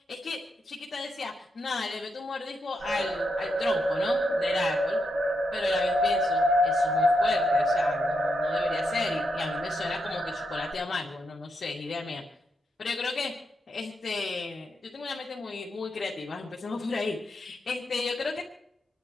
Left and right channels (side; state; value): both; normal; correlation 0.82